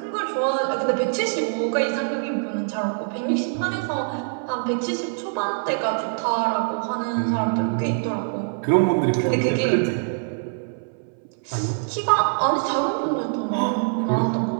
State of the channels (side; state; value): left; silent; 60 dB below the other